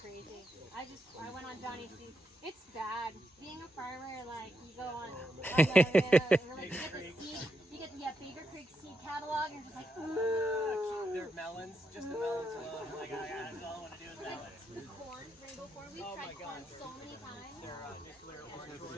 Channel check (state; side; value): normal; both; correlation 0.83